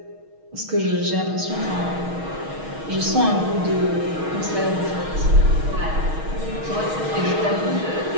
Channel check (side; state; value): left; late; 6.4 ms